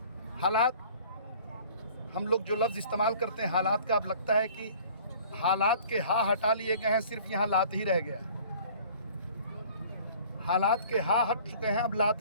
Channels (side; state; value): both; inverted; correlation -0.50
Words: हालात, हम लोग जो लफ्ज़ इस्तेमाल करते हैं हालात का, अब लगता है कि हालात के हा हटा लिए गए हैं, सिर्फ यहाँ लात ही रह गया। हालात के हा हट चुके हैं, अब लात